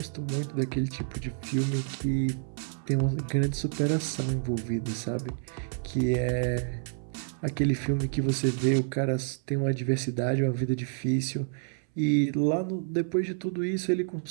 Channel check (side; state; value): left; silent; 59 dB below the other